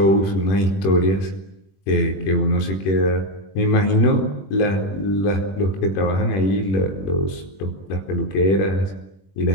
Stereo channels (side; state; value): right; late; 21 ms